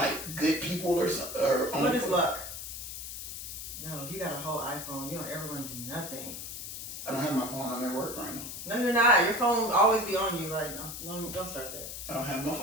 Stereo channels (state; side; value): noise; left; hiss, 8 dB below the sound